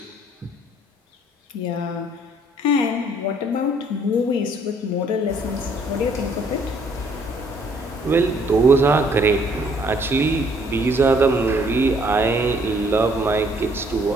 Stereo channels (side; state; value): both; normal; correlation 0.63